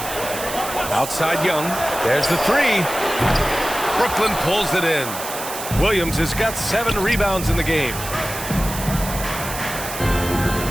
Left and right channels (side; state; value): right; noise; hiss, 8 dB below the sound